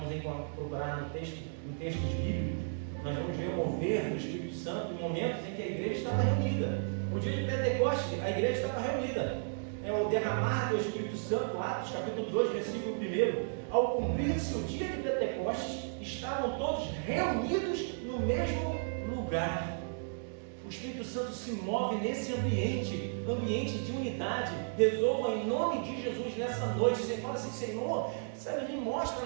procurar em textos bíblicos, nós vamos ver o mover do Espírito Santo em momentos em que a igreja estava reunida. No dia de Pentecostes, a igreja estava reunida. O derramar do Espírito Santo, Atos capítulo 2, versículo 1. Ao cumprir-se o dia de Pentecostes, estavam todos reunidos no mesmo lugar. O Espírito Santo se move nesse ambiente de unidade. Resolva em nome de Jesus nessa noite. Você fala assim: Senhor, me mostra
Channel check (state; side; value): silent; left; digital silence